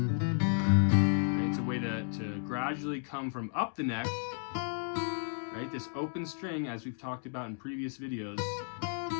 Right, it's a way to gradually come from up the neck. Right, this open string, as we've talked about in previous videos,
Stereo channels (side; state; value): right; silent; 56 dB below the other